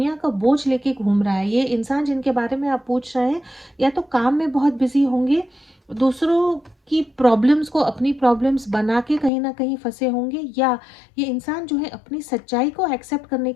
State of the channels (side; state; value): right; drops out; at 9.3 s